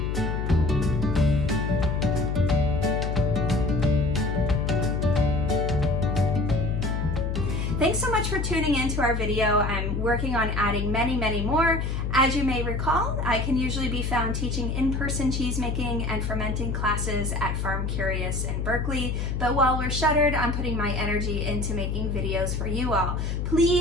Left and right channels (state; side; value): noise; left; hum, 1 dB below the sound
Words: Thanks so much for tuning in to our video. I'm working on adding many, many more. As you may recall, I can usually be found teaching in-person cheese making and fermenting classes at FARMcurious in Berkeley. But while we're shuttered, I'm putting my energy into making videos for you all.